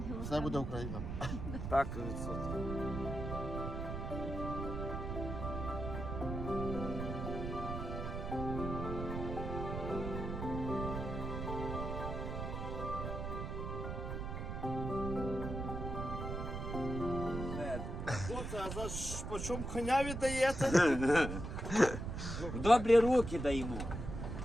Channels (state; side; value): noise; right; rumble, 5 dB below the sound